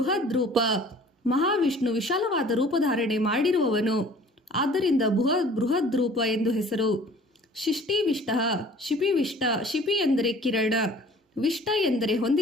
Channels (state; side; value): normal; both; correlation 0.50